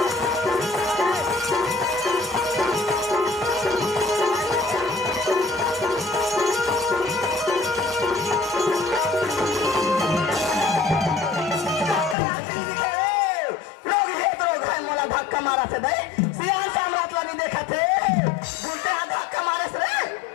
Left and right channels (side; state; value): right; drops out; at 12.2 s